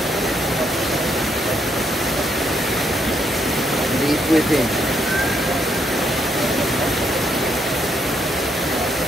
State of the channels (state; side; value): normal; both; correlation 0.74